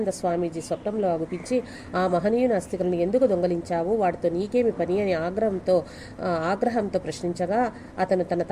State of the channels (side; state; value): both; identical; correlation 1.00